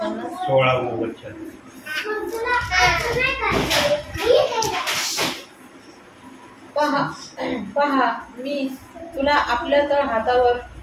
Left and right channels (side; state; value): both; identical; correlation 1.00